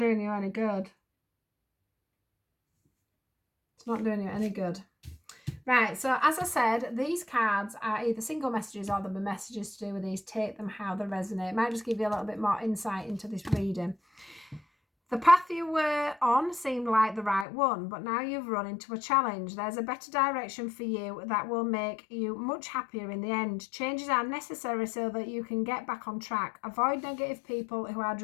you any good. It's not doing you any good. Right, so as I said, these cards are either single messages or there'll be messages to do with these. Take them how they resonate. It might just give you a little bit more insight into this reading. The path you were on seemed like the right one, but now you've run into a challenge. There's a better direction for you that will make you much happier in the end. Changes are necessary so that you can get back on track. Avoid negative people who are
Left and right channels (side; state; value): right; drops out; at 17.4 s